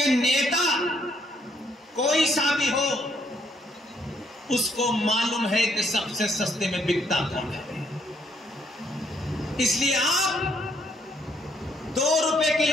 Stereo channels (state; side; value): normal; both; correlation 0.70